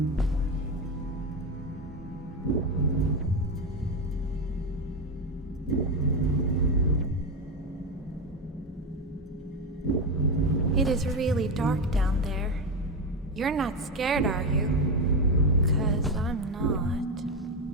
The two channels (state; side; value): normal; both; correlation 0.13